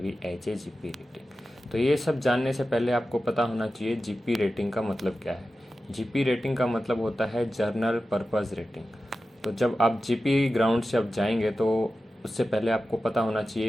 as a GP rating. तो ये सब जानने से पहले आपको पता होना चाहिए जीपी रेटिंग का मतलब क्या है। जीपी रेटिंग का मतलब होता है जर्नल पर्पस रेटिंग। तो जब आप जीपी ग्राउंड से आप जाएंगे तो उससे पहले आपको पता होना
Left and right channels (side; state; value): both; normal; correlation 0.93